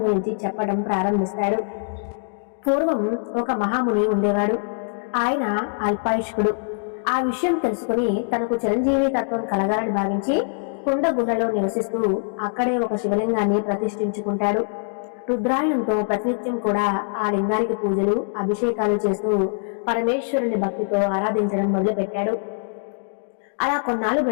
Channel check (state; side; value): silent; right; digital silence